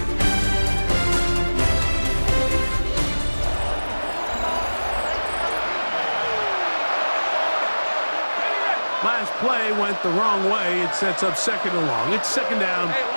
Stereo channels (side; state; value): both; inverted; correlation -1.00